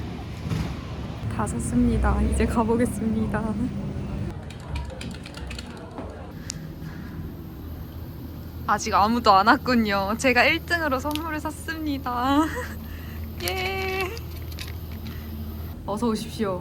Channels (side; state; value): both; identical; correlation 1.00